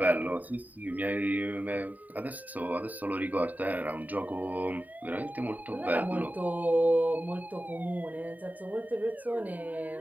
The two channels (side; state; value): left; late; 0.079 ms